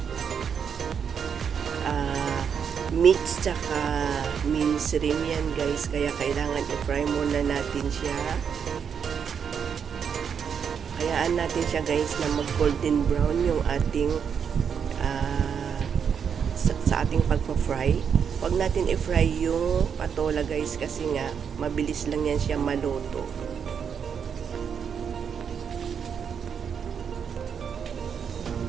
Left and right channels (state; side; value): quieter; left; 7.2 dB